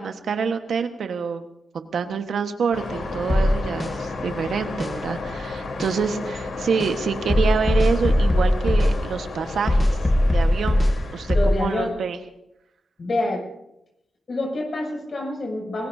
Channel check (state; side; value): normal; both; correlation 0.90